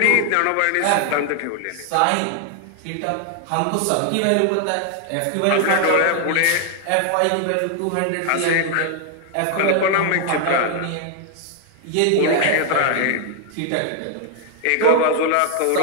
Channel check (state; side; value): different; both; correlation 0.00